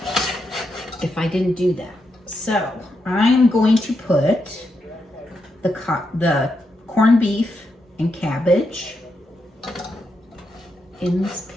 if I didn't do that. So I'm going to put the corned beef and cabbage in this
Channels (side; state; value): both; normal; correlation 0.83